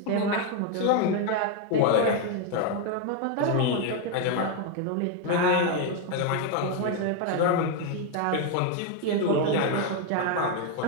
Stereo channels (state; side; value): different; both; correlation 0.01